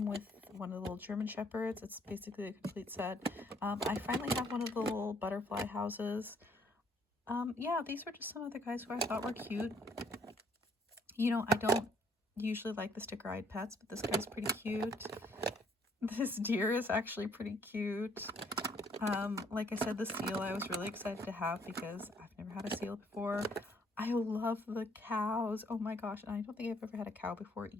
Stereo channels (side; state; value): both; normal; correlation 0.65